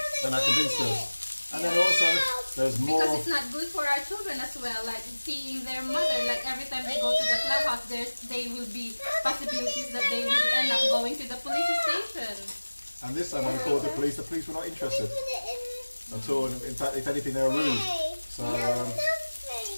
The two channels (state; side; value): inverted; both; correlation -1.00